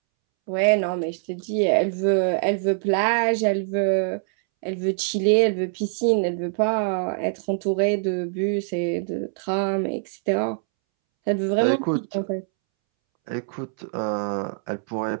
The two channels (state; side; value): silent; left; 63 dB below the other